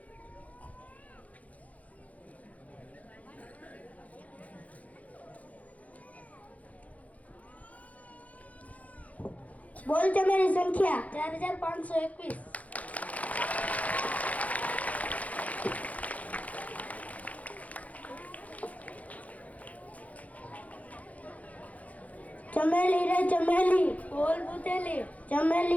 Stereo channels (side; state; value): right; late; 0.070 ms